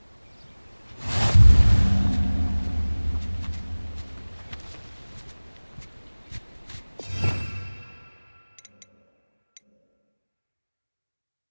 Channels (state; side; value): inverted; both; correlation -1.00